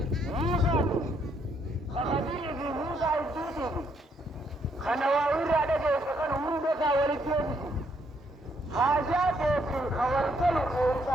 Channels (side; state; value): both; normal; correlation 0.71